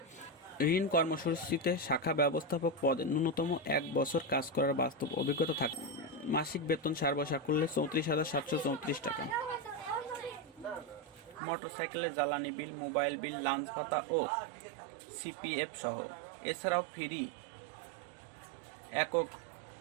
ঋণ কর্মসূচিতে শাখা ব্যবস্থাপক পদে ন্যূনতম 1 বছর কাজ করার বাস্তব অভিজ্ঞতা থাকে। মাসিক বেতন সর্বসাকুল্যে 34,734 টাকা, মোটরসাইকেলের জ্বালানি বিল, মোবাইল বিল, লাঞ্চ ভাতা ও সিপিএফ সহ। এছাড়াও ফ্রি একক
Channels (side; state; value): left; drops out; at 11.4 s